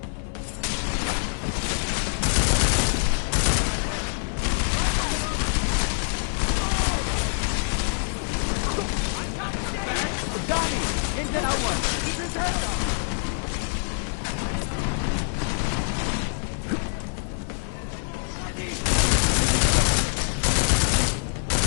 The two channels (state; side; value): silent; right; 62 dB below the other